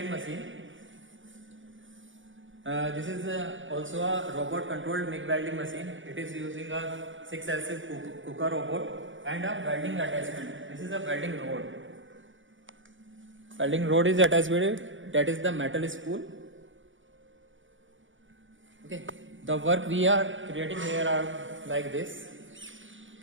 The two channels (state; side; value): late; left; 0.56 ms